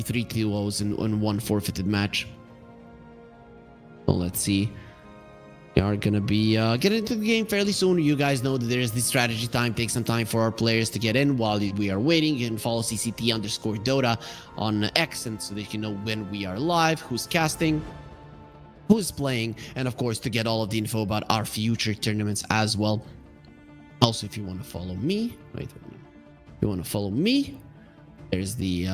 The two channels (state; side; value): identical; both; correlation 1.00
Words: 3 2-0s in one forfeited match. So let's see. We are going to be getting into the game fairly soon. You guys know that there is this strategy time. Take some time for our players to get in while we are waiting. You can follow CCT_Dota on X, and so they can know when we are live, who's casting, who's playing, and of course to get all of the info about our future tournaments as well. Also, if you want to follow me, if you want to follow me, there's